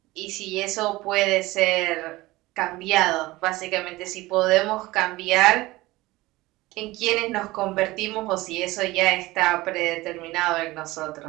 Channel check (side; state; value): left; quieter; 19.4 dB